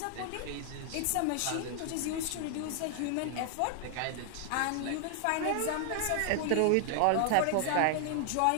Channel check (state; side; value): different; both; correlation 0.00